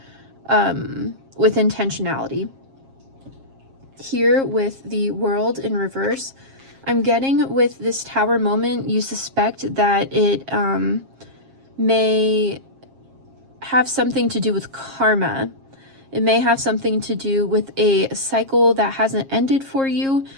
with intentionality. Here with the World in reverse, I'm getting with this Tower moment, you suspect that it may have something to do with karma. It may have something to do with a cycle that hasn't ended for you.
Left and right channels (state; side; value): late; left; 7.4 ms